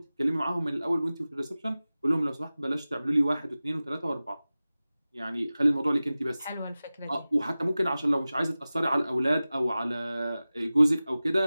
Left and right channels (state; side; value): inverted; both; correlation -0.96